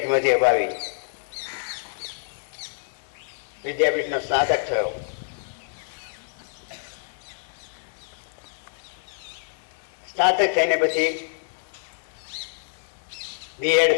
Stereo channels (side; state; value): right; silent; digital silence